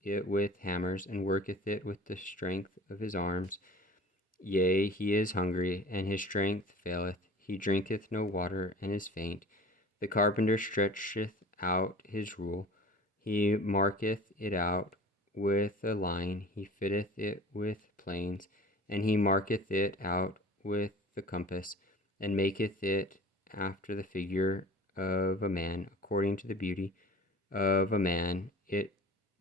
it with hammers, and worketh it with the strength of his arms. Yea, he is hungry, and his strength faileth. He drinketh no water, and is faint. The carpenter stretcheth out his rule. He marketh it out with a line. He fitteth it with planes, and he marketh it out with the compass, and maketh it after the figure of a man, according to the beauty of a man, that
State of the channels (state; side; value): normal; both; correlation 0.42